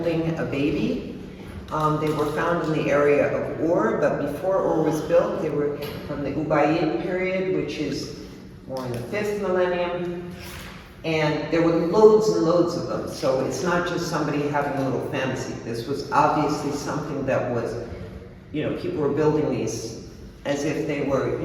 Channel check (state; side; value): identical; both; correlation 1.00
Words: a baby. They were found in the area of Ur, but before Ur was built, they were from the Ubaid period, which is more in the 5th millennium. And there were loads and loads of them. So it's not just somebody having a little fantasy. This was obviously something that was, people were building these as if they were,